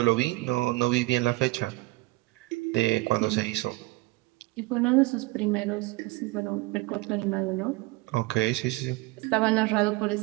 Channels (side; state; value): left; quieter; 22.2 dB